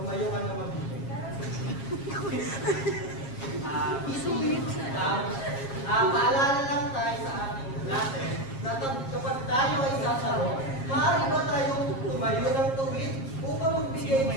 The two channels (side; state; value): right; late; 7.4 ms